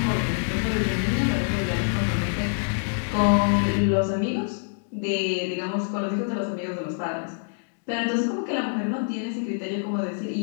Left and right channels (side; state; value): right; silent; digital silence